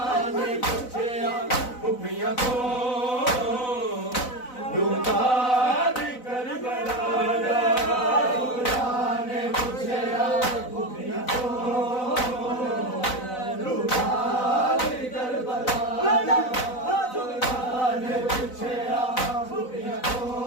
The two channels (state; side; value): late; right; 4.0 ms